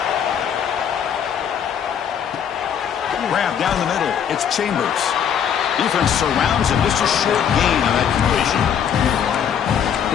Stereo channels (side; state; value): right; quieter; 8.3 dB